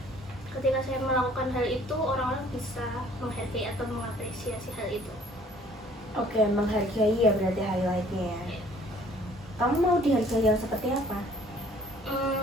Ketika saya melakukan hal itu orang-orang bisa menghargai atau mengapresiasi hal itu. Oke, menghargai ya berarti highlightnya ya. Iya. Kamu mau dihargai yang seperti apa?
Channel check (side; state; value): both; normal; correlation 0.56